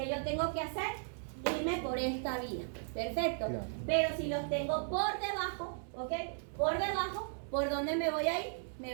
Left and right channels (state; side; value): silent; left; digital silence